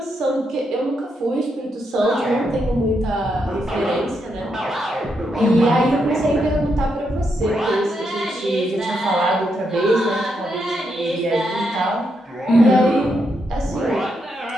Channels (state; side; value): normal; both; correlation 0.81